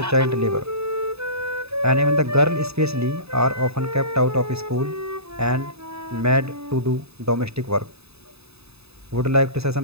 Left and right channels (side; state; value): left; late; 0.79 ms